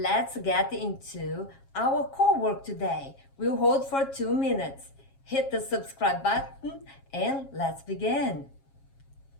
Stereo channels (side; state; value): right; late; 7.4 ms